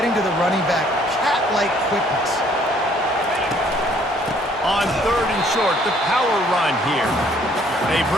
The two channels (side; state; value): both; normal; correlation 0.61